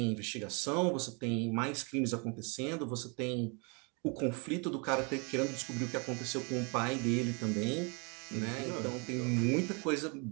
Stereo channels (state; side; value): quieter; left; 33.5 dB